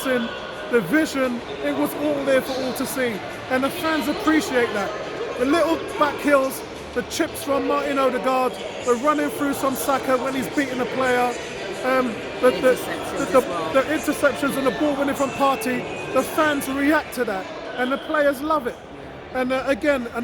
the vision, it was all there for all to see. And the fans appreciate that. The little back heels, the chips from Martin Odegaard, the running through some Saka when he's beating a player, the interceptions and the ball winning from Partey, the fans react to that and the players love it. And again,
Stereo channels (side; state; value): both; identical; correlation 1.00